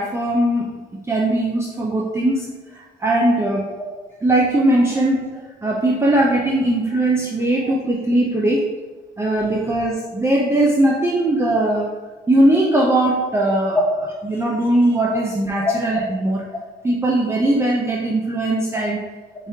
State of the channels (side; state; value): both; normal; correlation 0.67